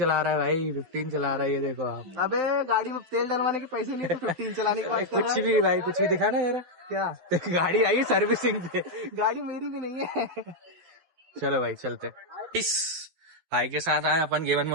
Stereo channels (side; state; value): left; late; 12 ms